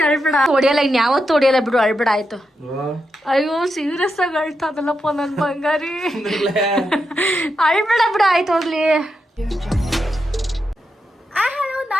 ಅಳ್ಬೇಡ. ಹೊಡಿಯಲ್ಲ, ಇನ್ ಯಾವತ್ತು ಹೊಡಿಯಲ್ಲ ಬಿಡು, ಅಳ್ಬೇಡ ಆಯ್ತು. ಅಯ್ಯೋ ಸೀರಿಯಸ್ ಆಗಿ ಅಳ್ತಾದಲ್ಲಪ್ಪ ನನ್ ಬಂಗಾರಿ. ಅಳ್ಬೇಡ ಬಿಡು, ಆಯ್ತು ಹೋಗ್ಲಿ. ಹಲೋ,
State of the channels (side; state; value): both; normal; correlation 0.86